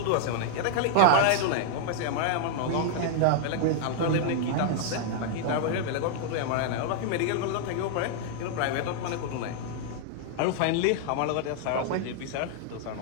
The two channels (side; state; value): both; different; correlation -0.01